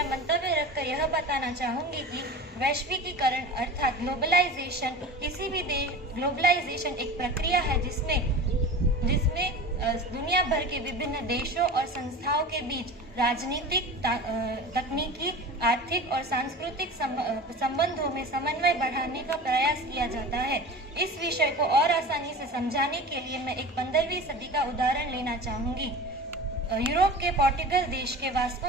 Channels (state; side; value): normal; both; correlation 0.34